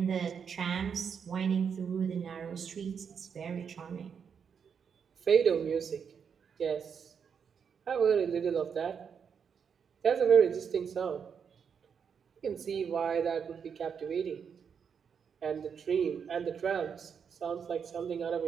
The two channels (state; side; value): quieter; left; 6.9 dB